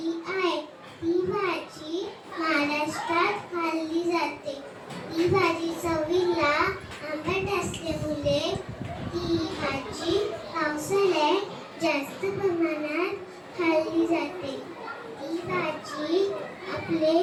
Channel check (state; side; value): identical; both; correlation 1.00